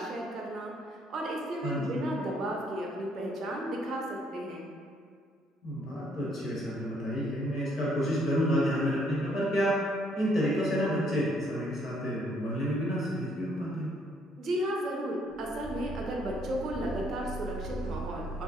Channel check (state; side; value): normal; both; correlation 0.68